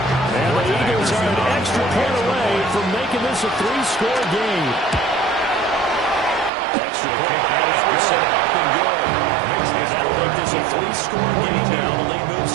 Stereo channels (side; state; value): left; drops out; at 6.5 s